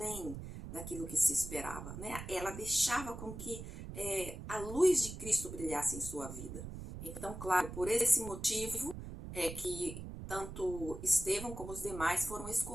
daquilo que se esperava, né? Ela deixava com que a luz de Cristo brilhasse em sua vida. Então, claro, por esse motivo é que tanto Estevão como os demais foram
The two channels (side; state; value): right; noise; rumble, 9 dB below the sound